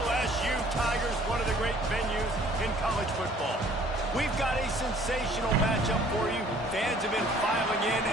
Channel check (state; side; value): normal; both; correlation 0.56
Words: Tigers, one of the great venues in college football. We've got a sensational matchup for you. Fans have been filing in